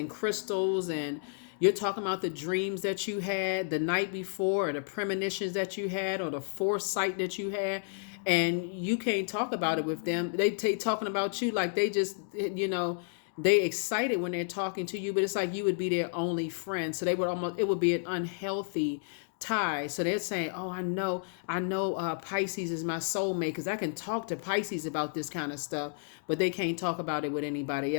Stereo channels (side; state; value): right; silent; digital silence